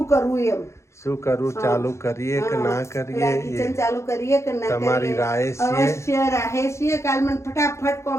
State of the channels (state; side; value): late; right; 0.14 ms